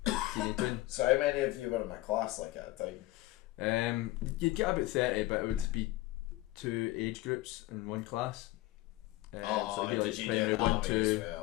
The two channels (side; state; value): right; quieter; 18.2 dB